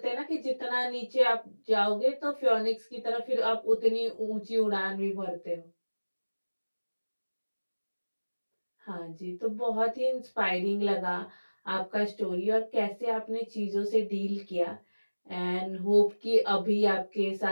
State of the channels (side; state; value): both; inverted; correlation -1.00